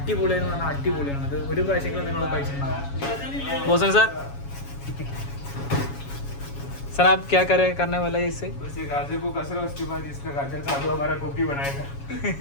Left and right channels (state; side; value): late; right; 7.2 ms